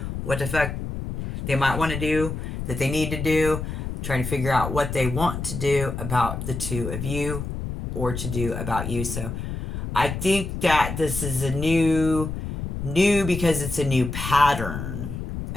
what the fuck they might want to do, that they need to do, trying to figure out what they want to do about the 2 of you or to do about you. So I think that this is a new because it's a new pattern.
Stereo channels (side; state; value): left; noise; rumble, 5 dB below the sound